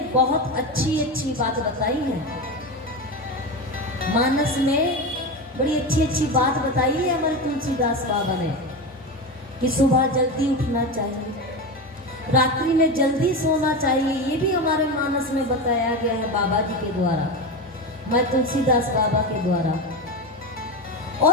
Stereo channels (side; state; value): both; normal; correlation 0.20